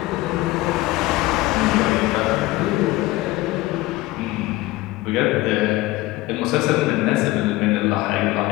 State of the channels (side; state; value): right; quieter; 18.8 dB